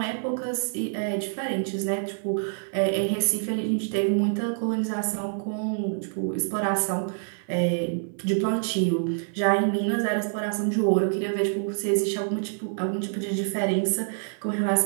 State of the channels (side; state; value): left; silent; 56 dB below the other